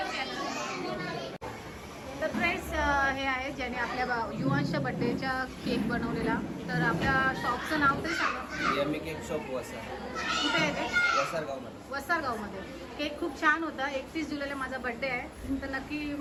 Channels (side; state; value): both; identical; correlation 1.00